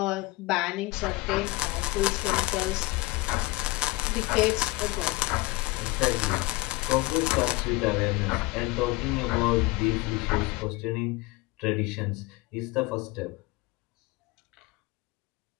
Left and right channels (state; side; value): quieter; right; 20.5 dB